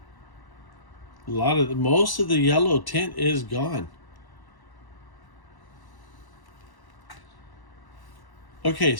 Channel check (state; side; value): late; right; 1.1 ms